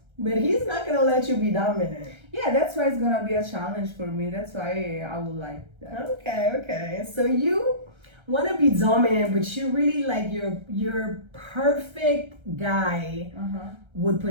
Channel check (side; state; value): left; late; 1.3 ms